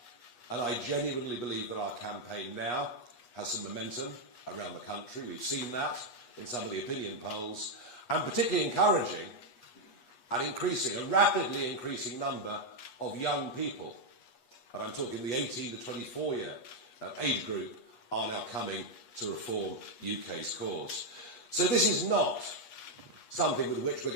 And I genuinely believe that our campaign now has some momentum around the country. We've seen that in some of the opinion polls, and particularly encouraging and a rapidly increasing number of young people, and I'm talking the 18 to 24 year age group, are now coming to reform UK's cause. So this is not something with which we're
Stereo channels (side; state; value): right; late; 8.3 ms